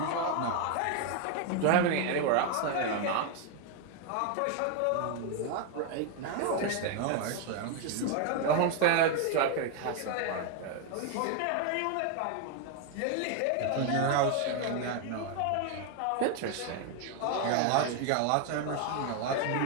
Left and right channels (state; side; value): different; both; correlation 0.01